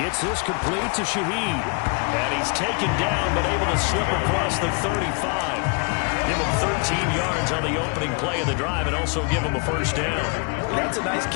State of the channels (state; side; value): quieter; right; 34.4 dB